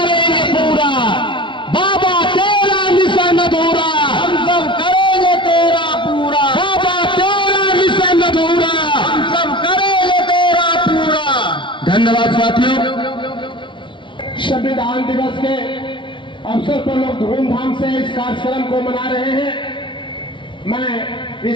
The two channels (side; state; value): right; late; 0.24 ms